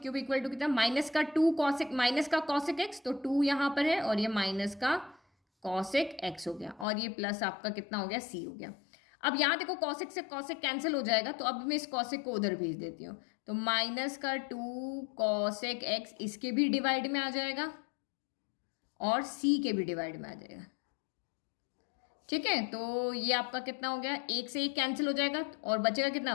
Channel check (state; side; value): drops out; right; at 6.9 s